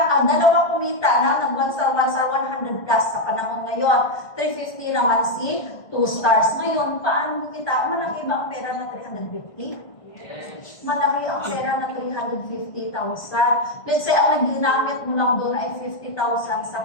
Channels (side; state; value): right; late; 1.6 ms